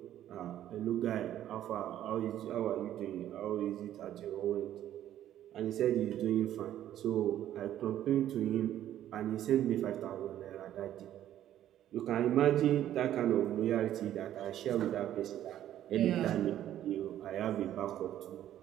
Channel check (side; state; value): left; quieter; 11.9 dB